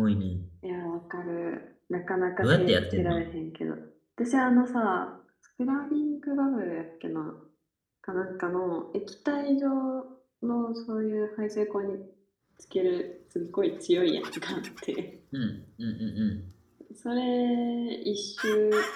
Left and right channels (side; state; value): both; identical; correlation 1.00